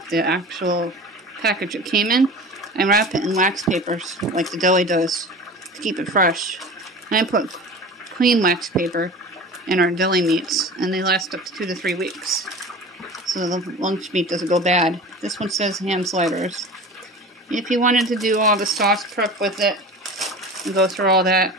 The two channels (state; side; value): normal; both; correlation 0.36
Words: the actual package it came in. I wrap it in wax papers like the deli does to keep it fresh. And I put clean wax paper in our deli meats and they last up to 2 to 3 weeks. So the lunch meat doesn't go bad. This one says ham sliders. If you wanted to do all the sauce prep with it and go through all that,